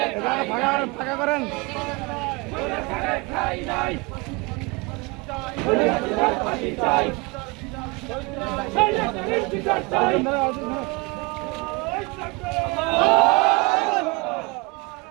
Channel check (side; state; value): left; quieter; 27.5 dB